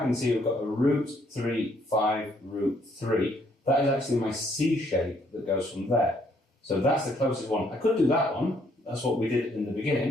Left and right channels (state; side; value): normal; both; correlation 0.68